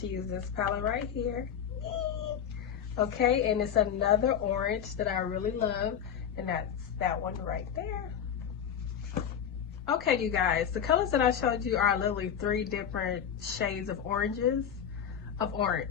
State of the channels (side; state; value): right; quieter; 8.5 dB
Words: use this palette right here. Okay, and it's another orange that I really love, and that's that one right there. Okay, you guys, the colors that I showed you are literally 3 different shades of orange.